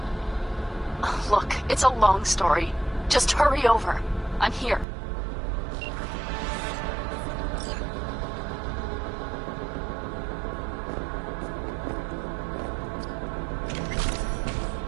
Look, it's a long story. Just hurry over. I'm here.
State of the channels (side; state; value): left; drops out; at 4.9 s